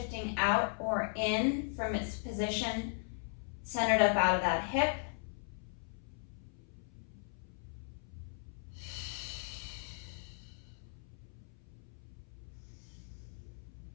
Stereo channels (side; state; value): right; silent; 52 dB below the other